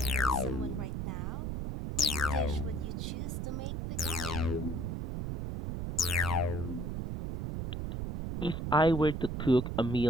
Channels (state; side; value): noise; right; rumble, 3 dB below the sound